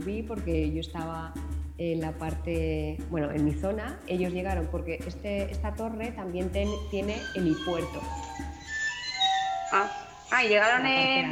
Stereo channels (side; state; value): both; identical; correlation 1.00